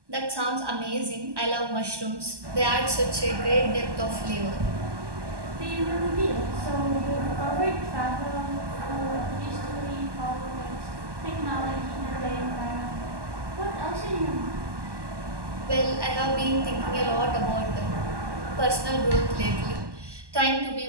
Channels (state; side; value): late; left; 1.1 ms